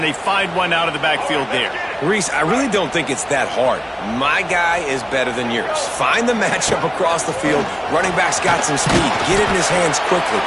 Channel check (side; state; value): both; identical; correlation 1.00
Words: they find one out of the backfield there. Reese, I really don't think it's that hard. My guy is better than yours. Find the matchup across the field. Running back's got some speed. Get it in his hands quickly.